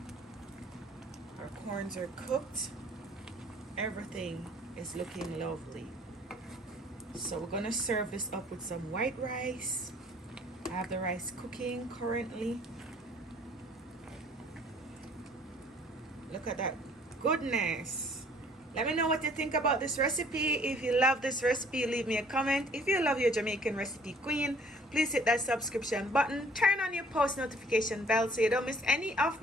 Our corns are cooked. Everything is looking lovely. So we're gonna serve this up with some white rice. I have the rice cooking currently. Look at that goodness. Let me know what you think about this recipe. If you love this recipe, leave me a comment. If you love your Jamaican recipe queen, please hit that subscription button. Turn on your post notification bell so you don't miss any of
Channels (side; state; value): both; normal; correlation 0.56